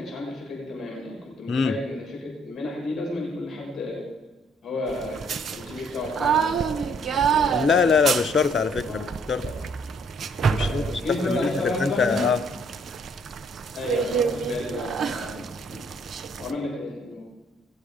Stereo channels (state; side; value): normal; both; correlation 0.64